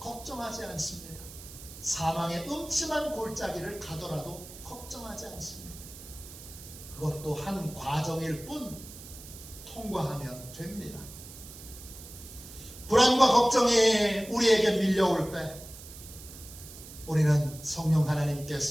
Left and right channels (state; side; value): noise; right; hiss, 15 dB below the sound